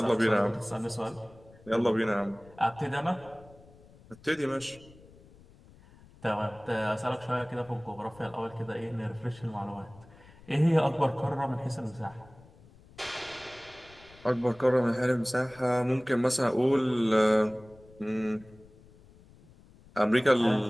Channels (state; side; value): noise; left; rumble, 24 dB below the sound